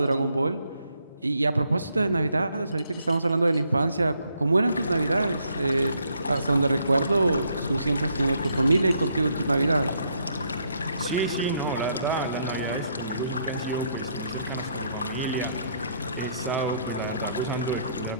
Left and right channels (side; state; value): both; inverted; correlation -0.72